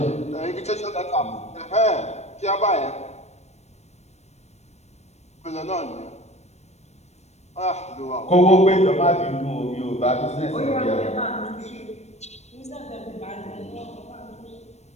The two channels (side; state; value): right; late; 0.32 ms